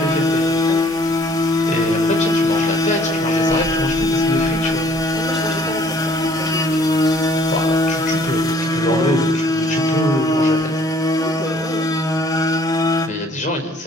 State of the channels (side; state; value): both; normal; correlation 0.58